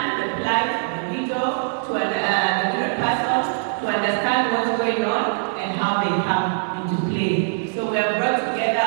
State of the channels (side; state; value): left; silent; digital silence